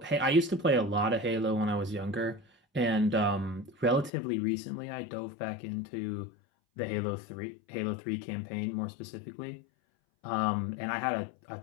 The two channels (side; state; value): right; drops out; at 4.1 s